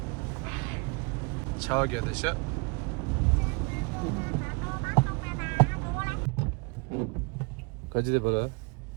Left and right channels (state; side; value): quieter; left; 29.9 dB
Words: 차게 되셔 가지대 봐라